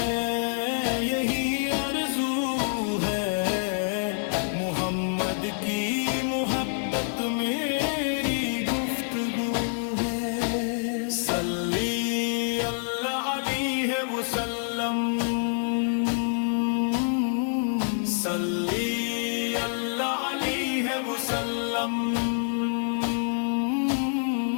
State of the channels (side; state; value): right; silent; digital silence